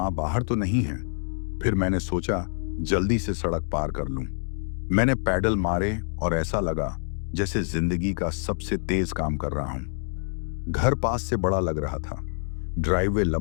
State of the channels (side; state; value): right; silent; digital silence